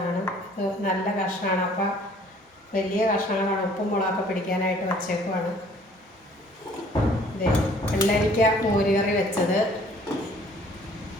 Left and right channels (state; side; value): normal; both; correlation 0.56